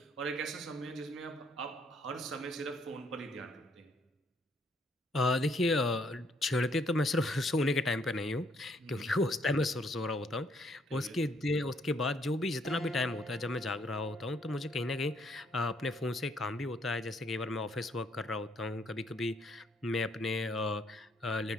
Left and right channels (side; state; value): both; normal; correlation 0.68